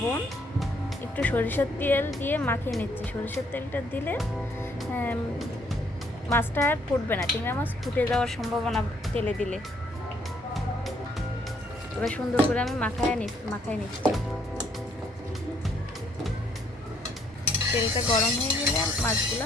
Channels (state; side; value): normal; both; correlation 0.67